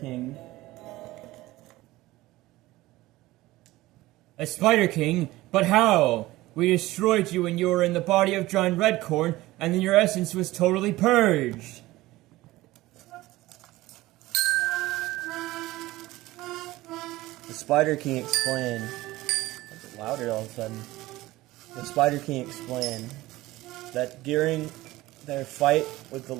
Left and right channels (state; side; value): quieter; left; 18.1 dB